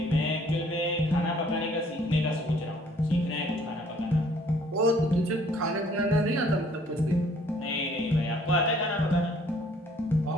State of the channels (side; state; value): both; normal; correlation 0.59